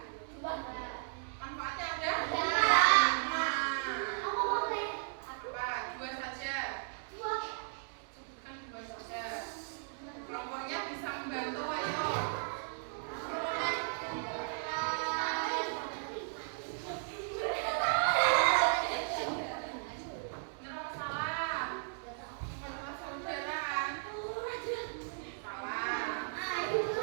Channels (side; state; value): left; silent; digital silence